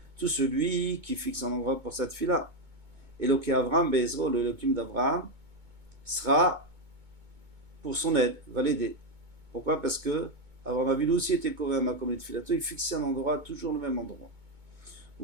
Tout celui qui fixe un endroit pour sa tfila. Eloké Avram, Bezro, le Elohim d'Avram, sera pour son aide, va l'aider. Pourquoi? Parce que Avram Avinu aussi était Kover Makom Letfilato, il fixait un endroit, toujours le même endroit.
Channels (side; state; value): left; late; 2.2 ms